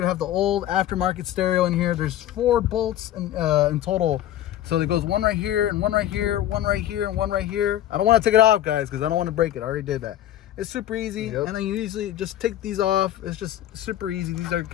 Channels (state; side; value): quieter; right; 12.5 dB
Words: have the old aftermarket stereo in here. There's 4 bolts in total. So there goes one right here, and one right here, one right here, and one right here. I don't want to take it off, guys, because I don't want to break it. I already did that. It's super easy, and then you usually just take these off. It's just super easy. These are